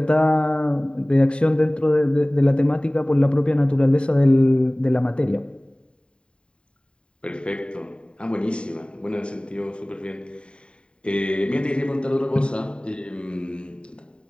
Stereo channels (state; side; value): late; right; 0.053 ms